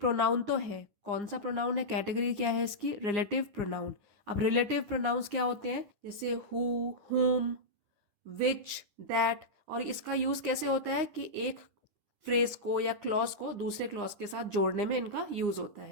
तो है, कौन सा प्रोनाउन है, कैटेगरी क्या है इसकी, रिलेटिव प्रोनाउन। अब रिलेटिव प्रोनाउंस क्या होते हैं, जैसे हु, हुम, विच, दैट। और इसका यूज कैसे होता है कि एक फ्रेज को या क्लॉज को दूसरे क्लॉज के साथ जोड़ने में इनका यूज होता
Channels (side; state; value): left; late; 10 ms